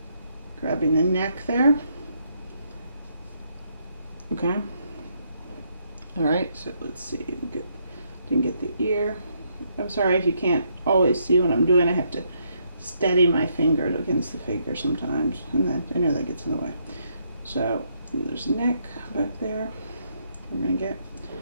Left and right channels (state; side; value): inverted; both; correlation -0.74